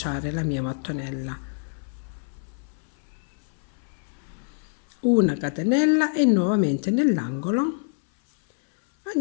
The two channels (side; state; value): right; silent; 61 dB below the other